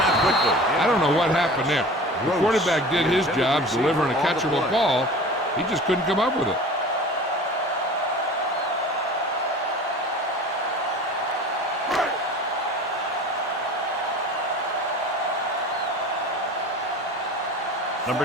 out quickly. I don't know what happened there. The quarterback did his job delivering a catchable ball. He just couldn't come up with it.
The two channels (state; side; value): normal; both; correlation 0.39